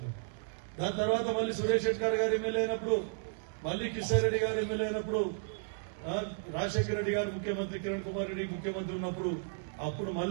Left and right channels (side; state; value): left; silent; digital silence